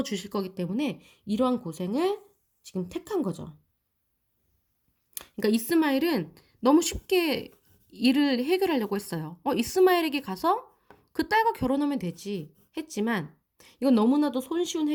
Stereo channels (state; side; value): identical; both; correlation 1.00